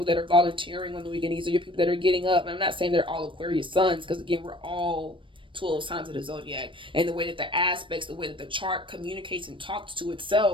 that are volunteering on the weekend. These are your people that are getting up. And I'm not saying they're all Aquarius sons, because again, we're all 12 signs of the zodiac, and the way that the aspects, the way that the chart communicates and talks to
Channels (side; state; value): left; late; 0.25 ms